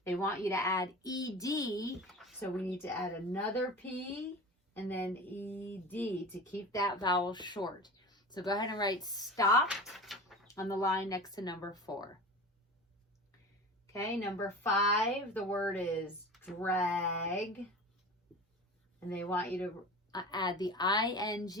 They want you to add ED, so we need to add another P and then ED to keep that vowel short. So go ahead and write stopped on the line next to number 4. Okay, number 5, the word is drag. And they want you to add the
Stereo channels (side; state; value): both; normal; correlation 0.34